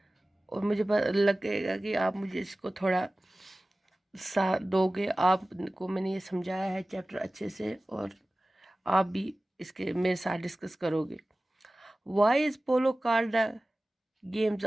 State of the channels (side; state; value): both; normal; correlation 0.97